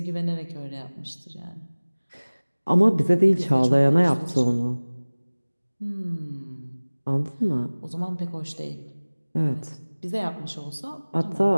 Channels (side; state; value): both; inverted; correlation -1.00